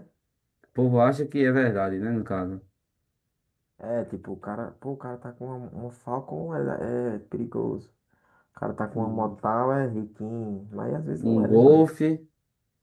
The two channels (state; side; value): identical; both; correlation 1.00